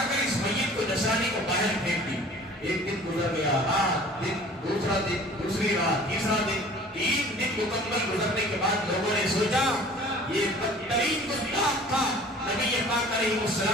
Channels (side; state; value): both; normal; correlation 0.47